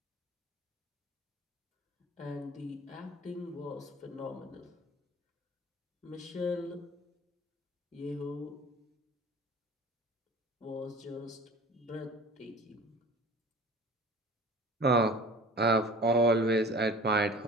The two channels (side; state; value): both; normal; correlation 0.41